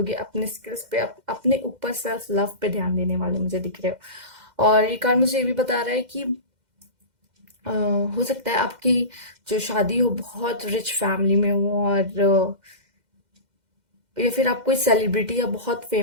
अपने स्किल्स पे, अपने ऊपर सेल्फ लव पे ध्यान देने वाले मुझे दिख रहे हो। और ये कार्ड मुझे ये भी बता रहा है कि अ, हो सकता है आपकी जो शादी हो बहुत रिच फैमिली में हो, और या फिर आप कोई सेलिब्रिटी या बहुत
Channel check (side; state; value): left; late; 2.1 ms